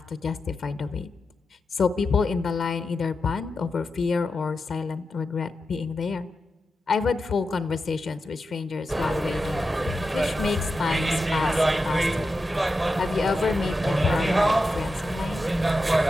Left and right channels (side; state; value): both; normal; correlation 0.89